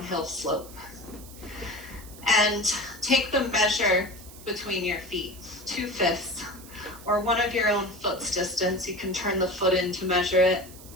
slope. And take the measure between your feet, 2/5, or one of your own foot's distance. You can turn the foot in to measure it.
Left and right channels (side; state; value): right; noise; hiss, 18 dB below the sound